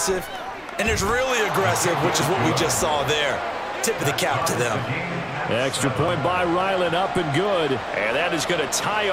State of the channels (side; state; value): both; identical; correlation 1.00